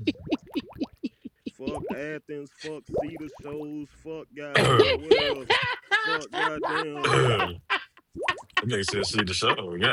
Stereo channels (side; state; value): both; identical; correlation 1.00